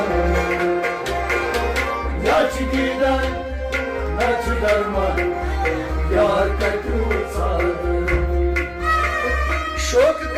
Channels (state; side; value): identical; both; correlation 1.00